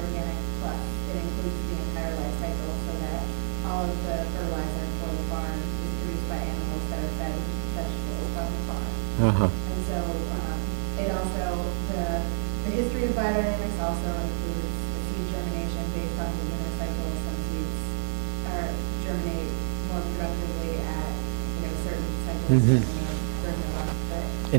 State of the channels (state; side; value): silent; left; digital silence